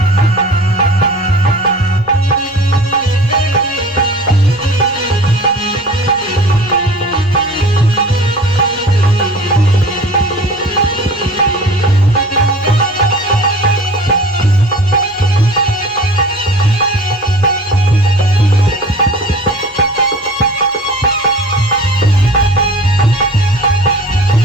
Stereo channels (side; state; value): both; normal; correlation 0.42